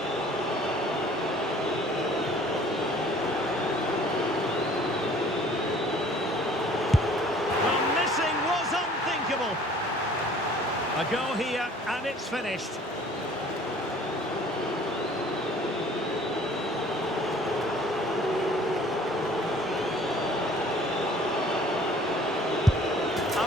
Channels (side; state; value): both; normal; correlation 0.53